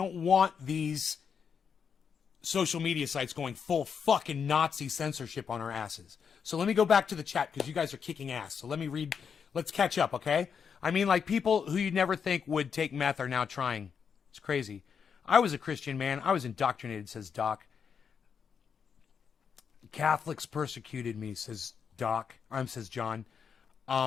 want these social media sites going full fucking Nazi censorship on our asses. So let me go back to the chat, because you guys are kicking ass. So let me read. Let's catch up, okay? I mean, like, people who you'd never think would take meth are now trying. It's crazy. I was a Christian, man. I was indoctrinated, says Doc. Catholics persecuted me, says says John.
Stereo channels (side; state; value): right; quieter; 6.7 dB